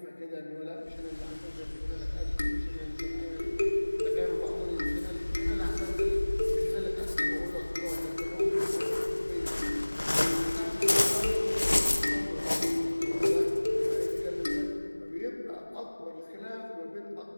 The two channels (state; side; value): inverted; both; correlation -1.00